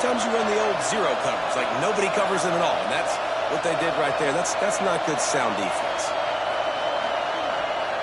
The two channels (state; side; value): identical; both; correlation 1.00